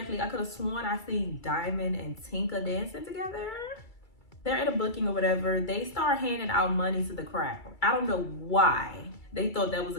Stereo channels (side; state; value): right; late; 2.3 ms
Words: I could have sworn I seen Diamond and Tinka dancing together. They're at a booking or whatever. They start handing out money to the crowd. I don't know why they thought that was